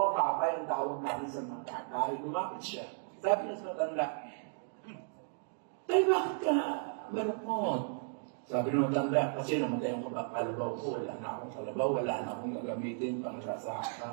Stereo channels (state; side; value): silent; left; digital silence